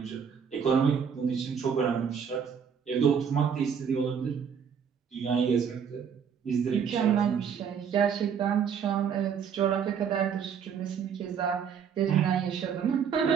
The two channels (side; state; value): left; quieter; 7.2 dB